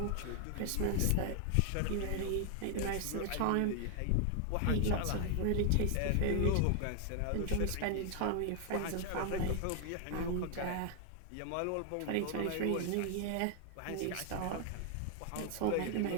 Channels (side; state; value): both; different; correlation 0.00